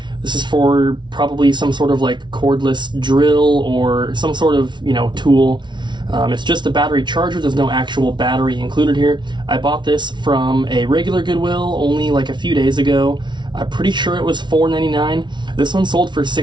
This is for probably some sort of like cordless drill or some sort of, you know, tool. It's just a battery charger. There's no actual battery included here. I bought this from a regular Goodwill only like a few days ago. I'm pretty sure it was $4.99. This one sold for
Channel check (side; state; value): left; late; 0.22 ms